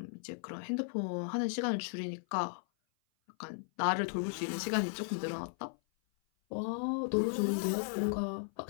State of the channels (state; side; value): silent; right; 54 dB below the other